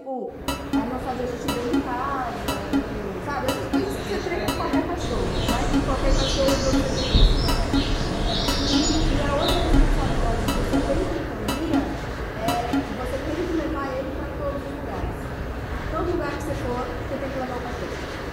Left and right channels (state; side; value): identical; both; correlation 1.00